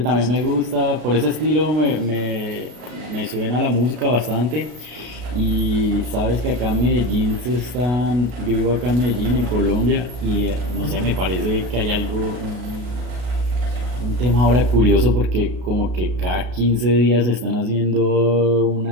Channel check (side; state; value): left; late; 33 ms